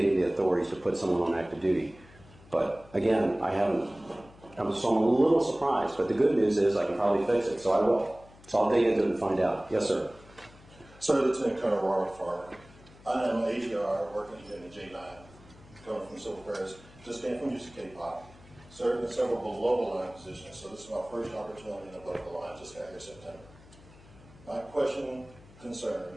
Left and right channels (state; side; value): noise; left; hum, 23 dB below the sound